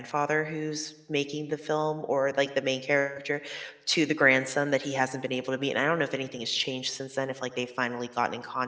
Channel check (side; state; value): both; identical; correlation 1.00